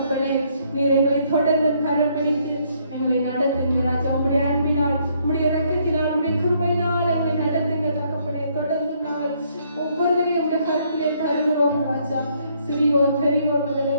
நீர் எங்களை தொடர்ந்து கரம் பிடித்து எங்களை நடத்துங்க ராஜா. உம்முடைய அன்பினால், உம்முடைய இரக்கத்தினால், உம்முடைய கிருபையினால் எங்களை நடத்துங்க தகப்பனே. தொடர்ந்து நாங்கள் ஒவ்வொருவரையும் உம்முடைய கருத்திலே தருகிறோம் ராஜா. சிறியோர் பெரியோர் முதல்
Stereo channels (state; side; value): inverted; both; correlation -0.69